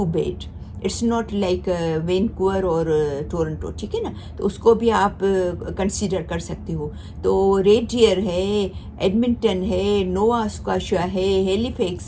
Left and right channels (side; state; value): both; identical; correlation 1.00